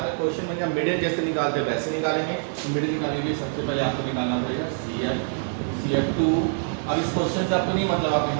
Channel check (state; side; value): silent; left; digital silence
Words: क्वेश्चन में मीडियन जैसे निकालते हैं वैसे निकालेंगे। तो मीडियन निकालने के लिए सबसे पहले आपको निकालना पड़ेगा CF2। अब इस क्वेश्चन से आपको नहीं मतलब, आप